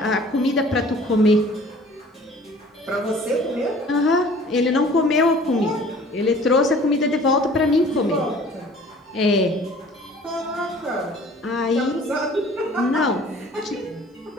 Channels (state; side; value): normal; both; correlation 0.50